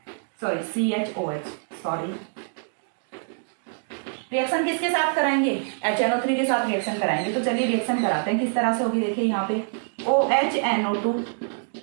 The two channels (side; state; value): left; silent; 62 dB below the other